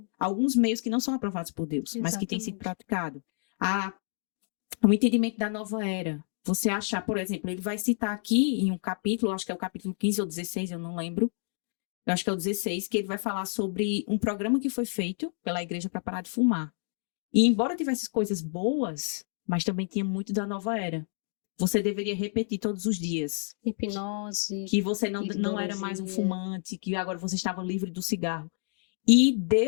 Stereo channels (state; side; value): silent; right; 59 dB below the other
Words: alguns meios que não são aprovados por Deus, mas que têm sido praticados. O entendimento da nova era. Você achar, por exemplo, ele vai citar aqui em um capítulo, acho que é o capítulo 15 ou 16, eu não lembro. Eu acho que é o 16, que ele vai falar sobre um programa que foi feito pela igreja para parar de fumar. E embora tivesse coisas boas, mas também tinha muito da nova era. Você deveria repetir todos os dias. Hipnose. Que você não era mais um fumante, que agora você estava livre do cigarro. E